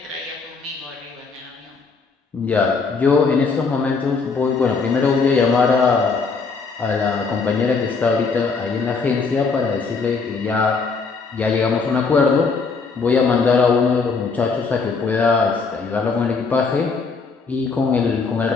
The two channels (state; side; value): quieter; right; 4.7 dB